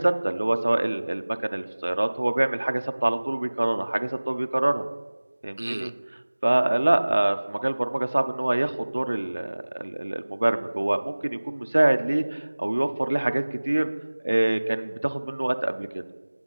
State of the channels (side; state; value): both; inverted; correlation -1.00